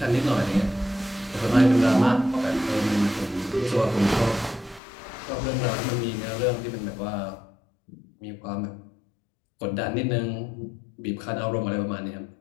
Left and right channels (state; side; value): drops out; right; at 4.8 s